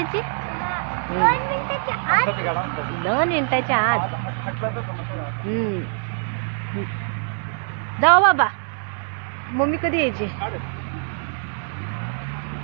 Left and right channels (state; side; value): silent; left; 55 dB below the other